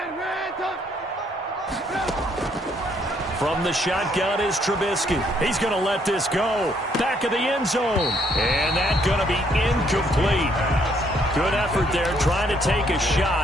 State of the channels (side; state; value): both; normal; correlation 0.68